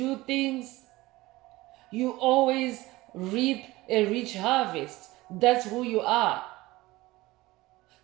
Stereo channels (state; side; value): quieter; left; 19.4 dB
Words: things, you always reap a rich harvest. That's who you are.